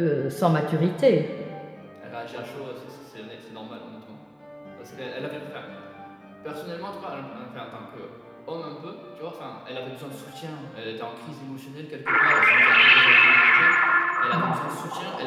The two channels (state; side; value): identical; both; correlation 1.00